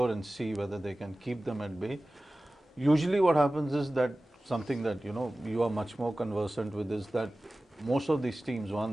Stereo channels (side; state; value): both; normal; correlation 0.97